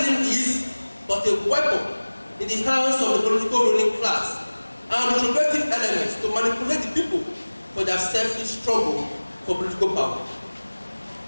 is but a weapon in the hands of the political ruling class and retrogressive elements to manipulate the people for their selfish struggle for political power.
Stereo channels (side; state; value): both; inverted; correlation -1.00